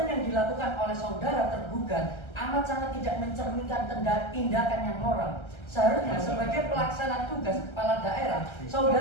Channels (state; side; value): late; right; 1.3 ms